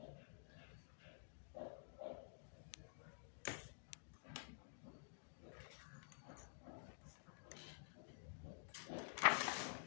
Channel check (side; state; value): right; silent; digital silence